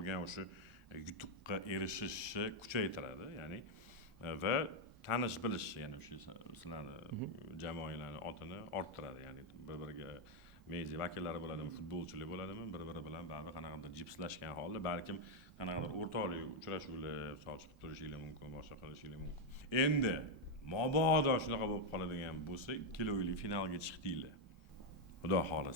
o'sha yutuqqa erishishni kuchaytiradi. Ya'ni va tanish bilish, ya'ni o'sha sizlarni jamoalarning otini orttiradi. Ya'ni bir-biriga media vakillari bo'ladimi, futbolchilar bo'ladimi, bir-biri bilan baribir qanaqadir jipslashgan holda balkim qanaqadir o'rtoqlik uchrashuvlar chiqib turishinglar mumkin, boshqa qilishinglar mumkin. Endi mabodo shunaqa bo'lib qoladigan bo'lsa, ikkilovli finalga chiqdinglar. Xudo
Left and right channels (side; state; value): both; normal; correlation 0.01